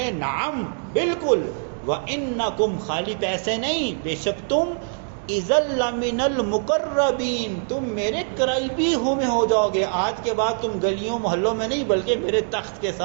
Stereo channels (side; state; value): left; silent; digital silence